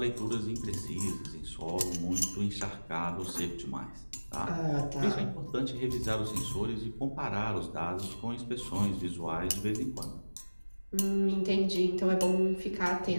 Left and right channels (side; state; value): both; inverted; correlation -1.00